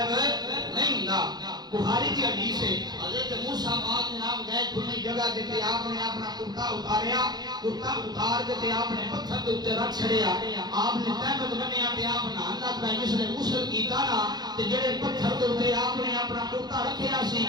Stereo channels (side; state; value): left; late; 0.20 ms